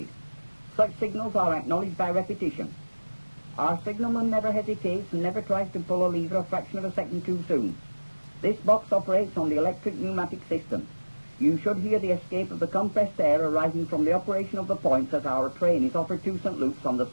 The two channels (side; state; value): both; inverted; correlation -1.00